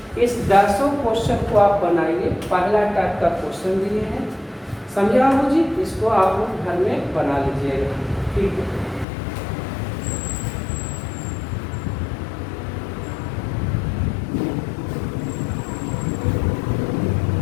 इस 10 क्वेश्चन को आप बनाइए, पहला टाइप का क्वेश्चन दिए हैं, समझे बाबू जी, इसको आप लोग घर में बना लीजिएगा, ठीक है।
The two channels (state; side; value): drops out; right; at 9.1 s